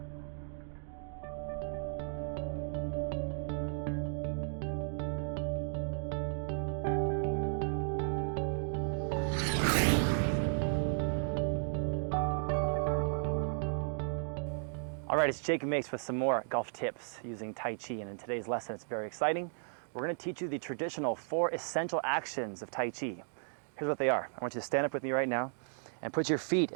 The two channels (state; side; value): silent; left; digital silence